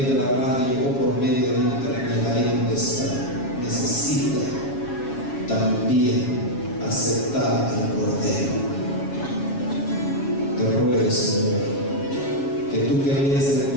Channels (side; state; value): right; late; 7.2 ms